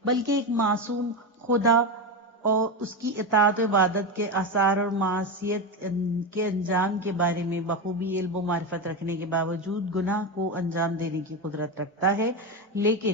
بلکہ ایک معصوم خدا اور اس کی اطاعت و عبادت کے آثار اور معصیت کے انجام کے بارے میں بخوبی علم و معرفت رکھنے کے باوجود گناہ کو انجام دینے کی قدرت رکھتا ہے،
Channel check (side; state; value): both; normal; correlation 0.15